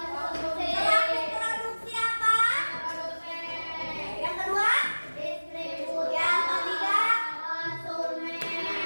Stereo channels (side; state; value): both; inverted; correlation -1.00